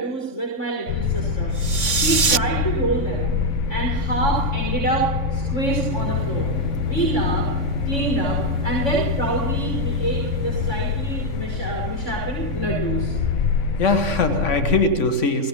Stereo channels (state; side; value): late; right; 3.5 ms